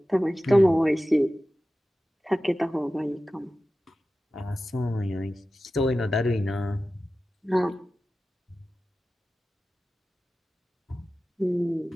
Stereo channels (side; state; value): both; normal; correlation 0.95